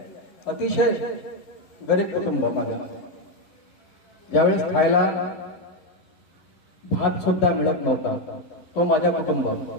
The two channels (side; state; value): right; late; 11 ms